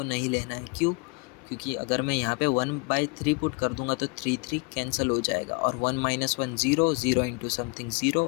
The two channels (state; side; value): quieter; right; 30.5 dB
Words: नहीं लेना है। क्यों? क्योंकि अगर मैं यहाँ पे 1/3 पुट कर दूंगा तो 3 कैंसिल हो जाएगा और 1 माइनस 1 0, 0 इंटू समथिंग 0